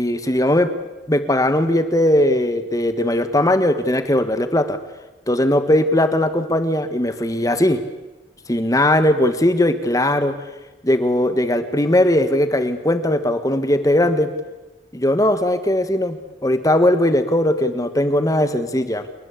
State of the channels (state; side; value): normal; both; correlation 0.68